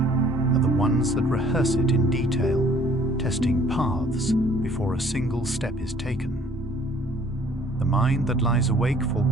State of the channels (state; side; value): normal; both; correlation 0.57